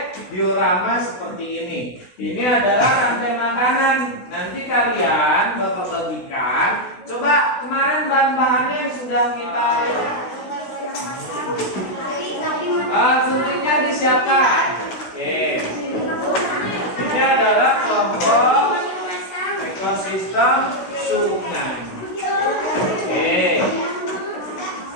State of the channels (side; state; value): right; late; 16 ms